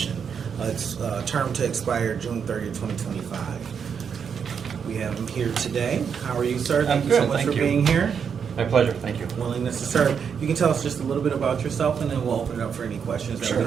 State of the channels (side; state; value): left; quieter; 6.9 dB